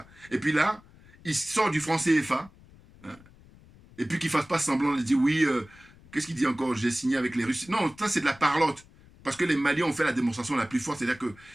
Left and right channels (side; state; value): left; noise; rumble, 24 dB below the sound